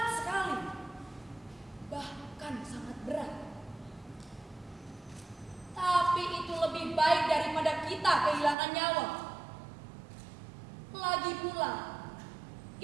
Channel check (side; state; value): left; drops out; at 8.6 s